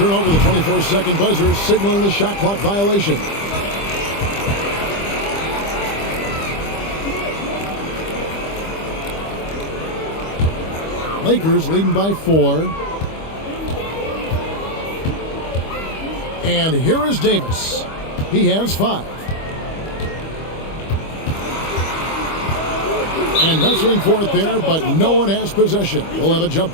over the 24-second buzzer, signaling the shot clock violation. Lakers leading by 4. And here is Davis. He has 5. And wrestling for it there, but no one has possession. We'll have a jump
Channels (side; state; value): right; late; 25 ms